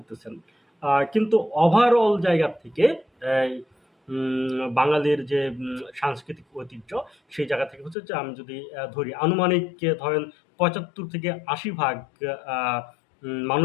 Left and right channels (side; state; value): right; drops out; at 8.0 s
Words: কিন্তু ওভারঅল জায়গা থেকে বাঙালির যে সাংস্কৃতিক ঐতিহ্য, সেই জায়গা থেকে হচ্ছে যে আমি যদি ধরি আনুমানিক ধরেন ৭৫ থেকে ৮০ ভাগ আহ,